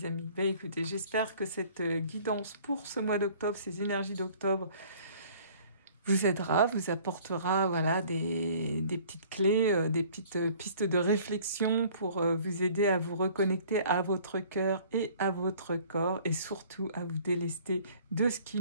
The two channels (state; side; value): inverted; both; correlation -0.53